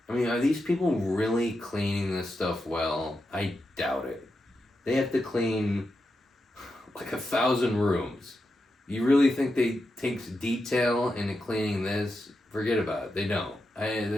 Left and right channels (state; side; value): normal; both; correlation 0.87